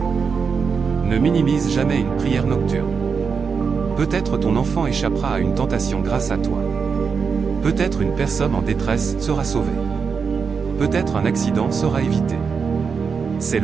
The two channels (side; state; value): left; quieter; 5.7 dB